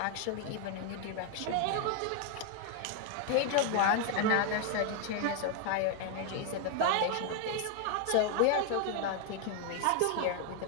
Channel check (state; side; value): different; both; correlation 0.00